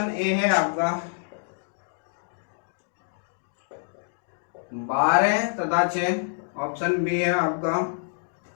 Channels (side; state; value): right; silent; digital silence